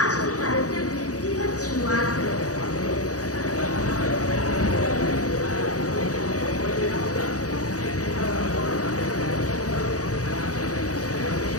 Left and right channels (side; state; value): right; late; 0.66 ms